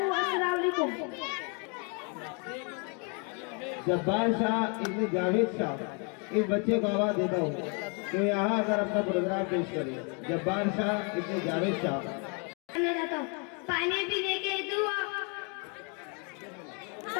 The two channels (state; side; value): quieter; right; 35.9 dB